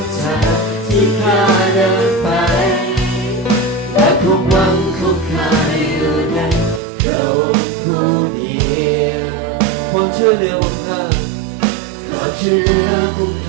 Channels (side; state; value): left; drops out; at 6.8 s